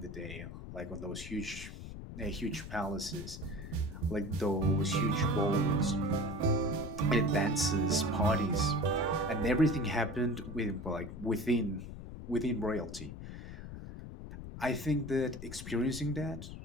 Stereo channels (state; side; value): noise; left; rumble, 11 dB below the sound